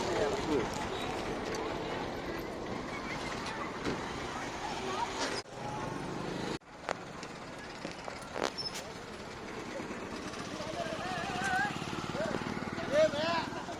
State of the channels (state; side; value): identical; both; correlation 1.00